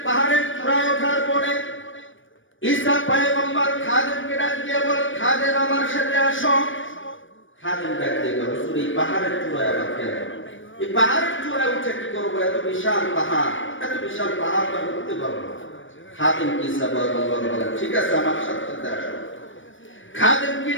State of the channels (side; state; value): right; late; 0.56 ms